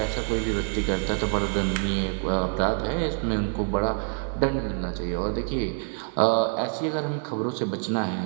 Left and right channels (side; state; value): left; silent; 56 dB below the other